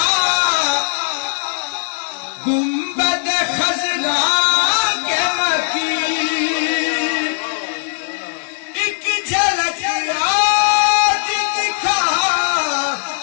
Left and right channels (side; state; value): right; silent; digital silence